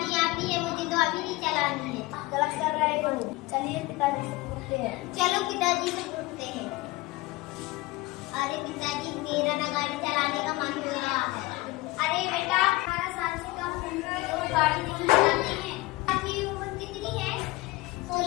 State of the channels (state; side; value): quieter; right; 20.5 dB